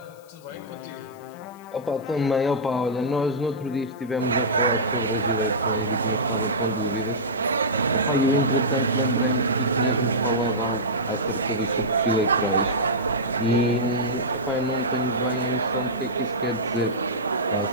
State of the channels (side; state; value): left; noise; hiss, 28 dB below the sound